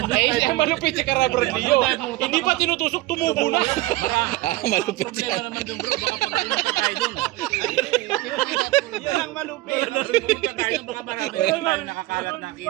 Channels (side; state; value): left; quieter; 18.6 dB